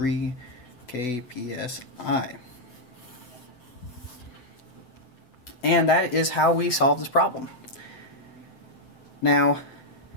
kpsi. And that is how we solve this problem. Now,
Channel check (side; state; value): right; late; 8.1 ms